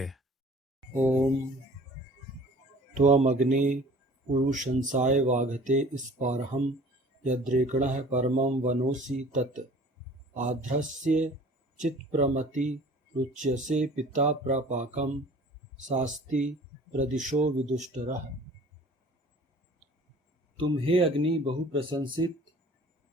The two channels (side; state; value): both; normal; correlation 0.48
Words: ओम त्वमग्ने पुरुषंसाय वाघते स्पारहम यद्रेकणः परमं वनोसि तत् आध्रस्य चित्प्रमति रुच्यसे पिता प्रपाकं शास्ति प्रदिशो विदुष्टरः। तुम हे अग्नि बहु प्रशंसित